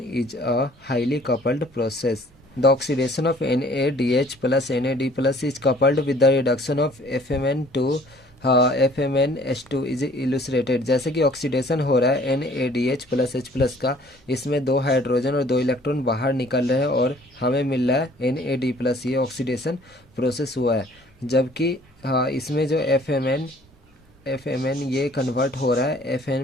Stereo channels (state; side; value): normal; both; correlation 0.55